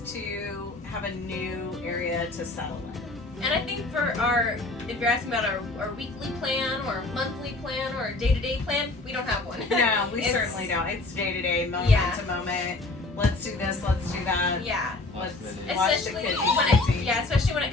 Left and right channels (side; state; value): right; quieter; 3.1 dB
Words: to have a new area to settle in. And I think for if you're asking about our weekly plan or monthly plan or day-to-day plan, we don't have one. No, we It's- certainly don't. It's day to day, moment Yeah. to moment. Let's do this, let's do that. Yeah. Let's Especially watch the Especially kids. especially when